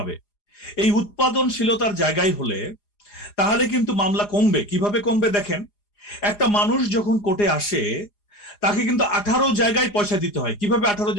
এই উৎপাদনশীলতার জায়গায় হলে তাহলে কিন্তু মামলা কমবে। কিভাবে কমবে দেখেন, একটা মানুষ যখন কোর্টে আসে তাকে কিন্তু 18 জায়গায় পয়সা দিতে হয়। কিভাবে 18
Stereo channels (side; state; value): right; late; 4.9 ms